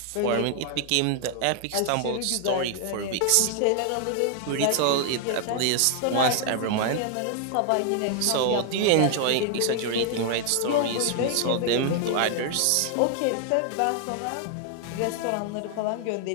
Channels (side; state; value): both; different; correlation 0.00